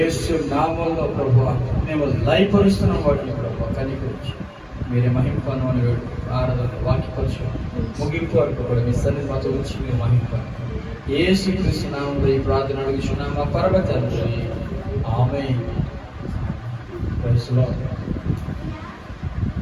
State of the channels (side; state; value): both; identical; correlation 1.00